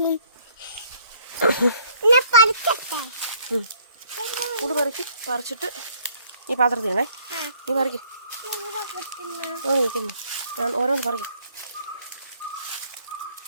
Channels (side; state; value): both; inverted; correlation -0.61